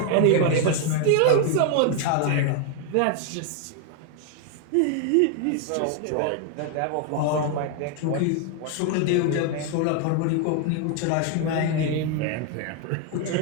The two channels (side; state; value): both; different; correlation 0.00